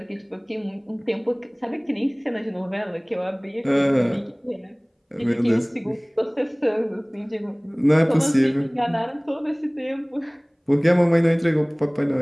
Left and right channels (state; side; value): identical; both; correlation 1.00